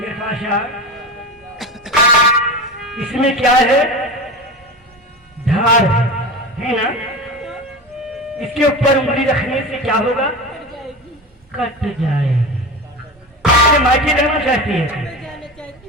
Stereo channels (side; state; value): both; normal; correlation 0.27